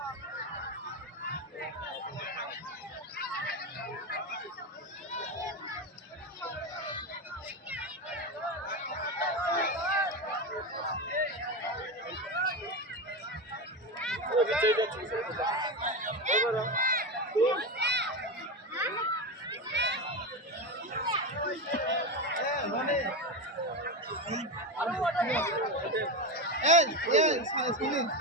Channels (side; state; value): both; normal; correlation 0.16